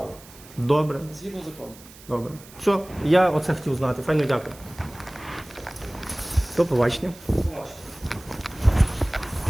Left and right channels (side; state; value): right; noise; hiss, 21 dB below the sound